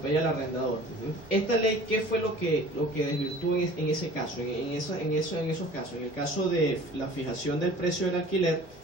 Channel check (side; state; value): both; normal; correlation 0.46